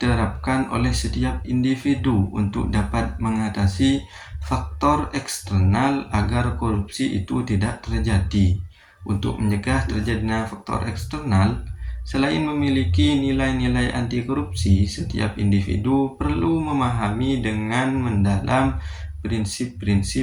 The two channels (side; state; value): both; identical; correlation 1.00